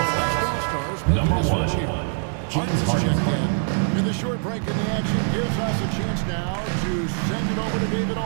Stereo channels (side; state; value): left; silent; 63 dB below the other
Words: West All-Stars making a switch here. Harden's checked in. And the short break in the action gives us a chance now to send it over to David